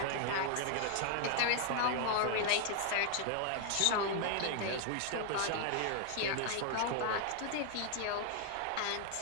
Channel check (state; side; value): different; both; correlation 0.00